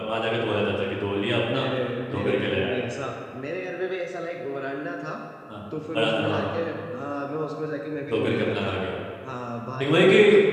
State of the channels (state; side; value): identical; both; correlation 1.00